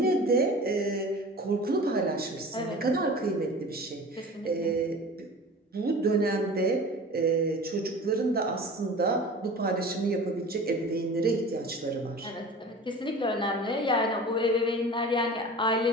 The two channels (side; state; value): both; normal; correlation 0.38